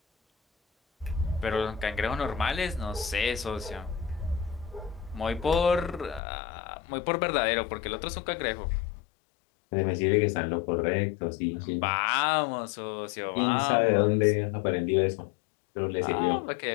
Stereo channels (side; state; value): right; drops out; at 6.2 s